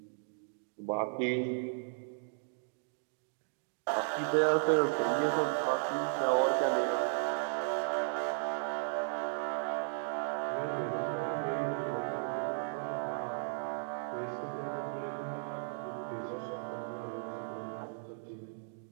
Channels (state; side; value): silent; left; digital silence